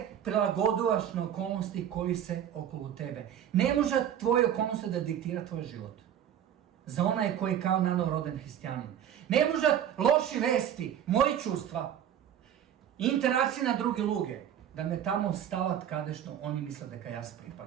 prilagodovaš na okolnosti koji se okolo tebe. Ne može tvoje okolnosti da diktira tvoj život. Za onaj koji je kao nanoroden hristijanin. Ne može loši vesti, moji čustva, interakcije na druge luge, da me tamo stavat kadešno, oni misle da ja se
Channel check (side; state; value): left; quieter; 10.0 dB